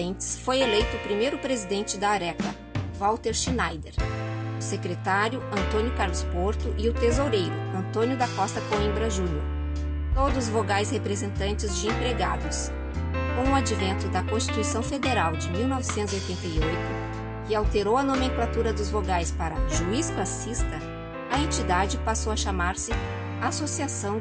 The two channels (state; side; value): identical; both; correlation 1.00